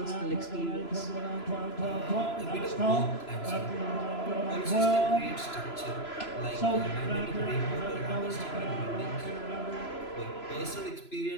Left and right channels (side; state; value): right; late; 3.0 ms